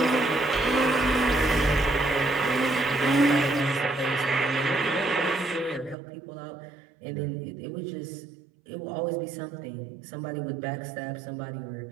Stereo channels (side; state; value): left; drops out; at 6.0 s